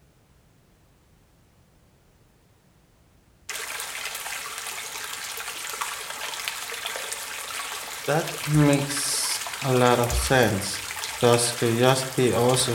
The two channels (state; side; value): identical; both; correlation 1.00